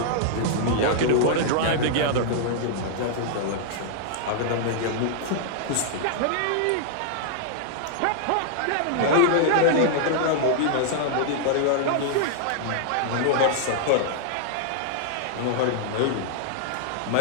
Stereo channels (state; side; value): different; both; correlation -0.01